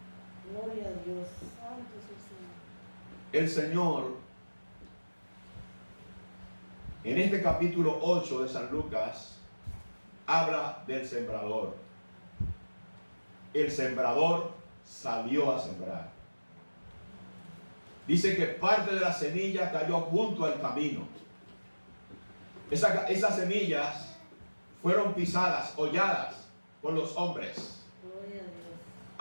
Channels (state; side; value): inverted; both; correlation -1.00